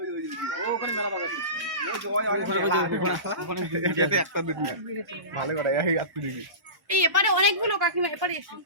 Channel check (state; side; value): late; left; 1.1 ms